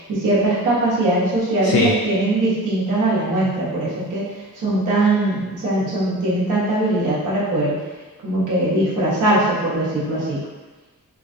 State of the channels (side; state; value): both; normal; correlation 0.35